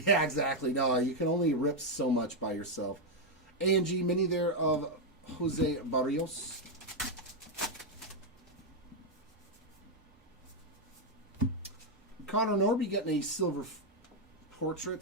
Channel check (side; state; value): both; normal; correlation 0.01